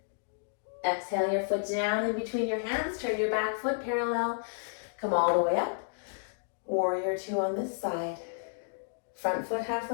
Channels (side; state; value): right; silent; digital silence